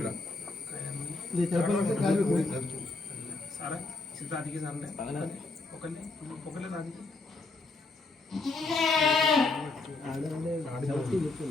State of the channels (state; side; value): quieter; right; 3.5 dB